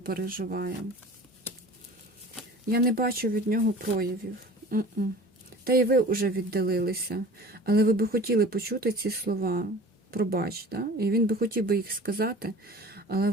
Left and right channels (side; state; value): both; normal; correlation 0.42